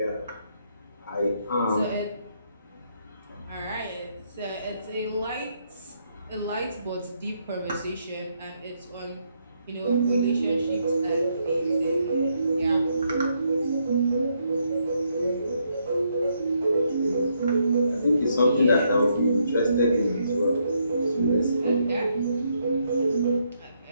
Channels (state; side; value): inverted; both; correlation -0.76